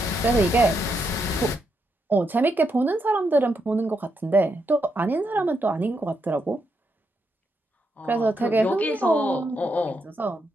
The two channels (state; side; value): normal; both; correlation 0.81